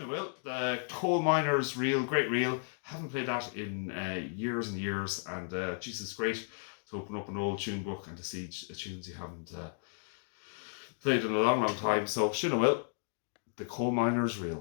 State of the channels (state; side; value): silent; right; 55 dB below the other